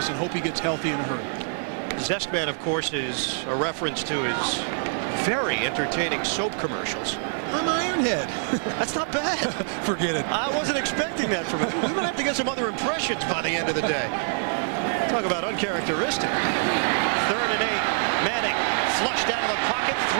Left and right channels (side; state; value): left; silent; 61 dB below the other